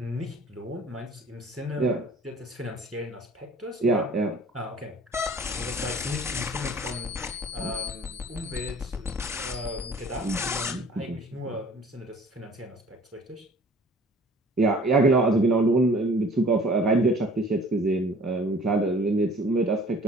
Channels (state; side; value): normal; both; correlation 0.51